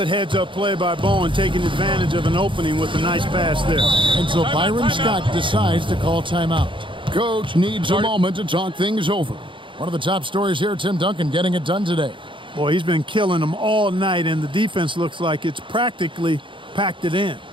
heads-up play by Bowen, taking advantage of an opening with a nice pass there. And so Byron Scott decides to call timeout. Coach needs a moment to talk things over. One of the top stories here, Tim Duncan getting it done today. Boy, he's been killing them all night, and the defense looks like it's practically packed it in.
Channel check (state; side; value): late; left; 0.24 ms